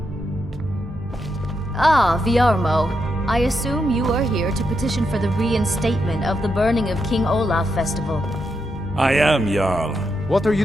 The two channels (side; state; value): both; normal; correlation 0.83